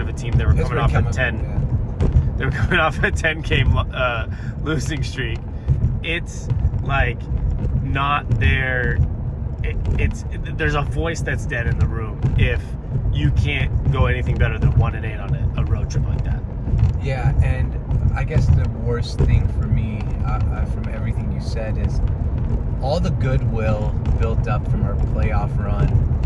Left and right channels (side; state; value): both; identical; correlation 1.00